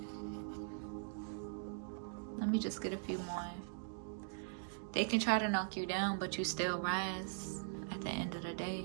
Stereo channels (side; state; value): left; silent; digital silence